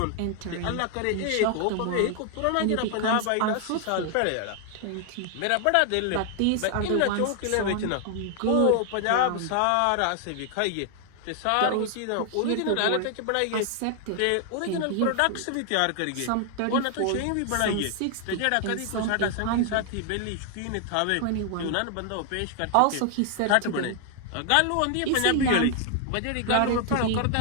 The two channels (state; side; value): different; both; correlation 0.00